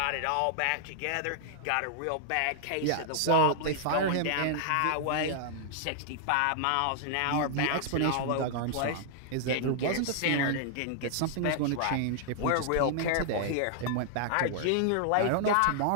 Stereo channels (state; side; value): different; both; correlation -0.01